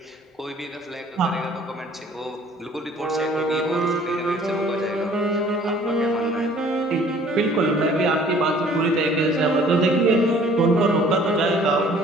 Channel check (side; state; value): both; normal; correlation 0.54